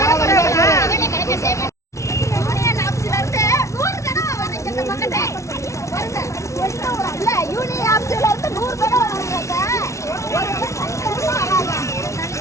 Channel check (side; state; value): right; late; 0.14 ms